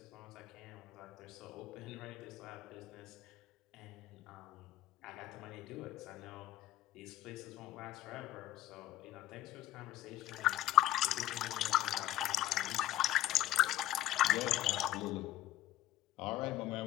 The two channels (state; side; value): quieter; right; 14.1 dB